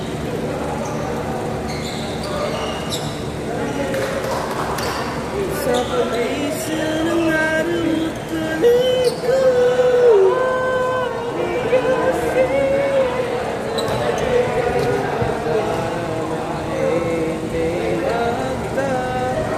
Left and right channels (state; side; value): identical; both; correlation 1.00